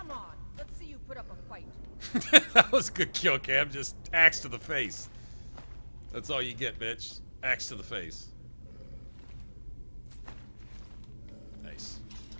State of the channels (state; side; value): inverted; both; correlation -1.00